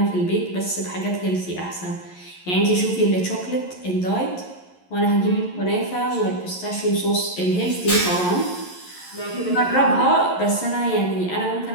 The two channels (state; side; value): late; right; 11 ms